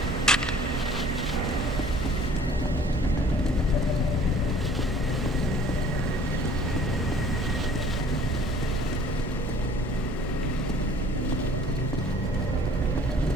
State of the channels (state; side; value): normal; both; correlation 0.53